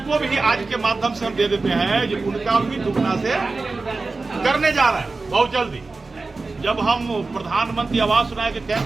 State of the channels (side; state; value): left; quieter; 3.7 dB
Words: भी आज के माध्यम से हम दे देते हैं जो उनका भी दुगना से करने जा रहे हैं बहुत जल्दी। जब हम प्रधानमंत्री आवास योजना के